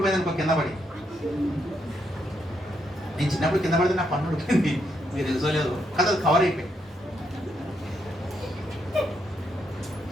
అనుకో కింద పడి. నేను చిన్నప్పుడు కింద పడితే నా పన్ను ఊడిపోయింది, మీరు తెలుసుకోలేదు కదా, అది కవర్ అయిపోయింది.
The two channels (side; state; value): both; normal; correlation 0.78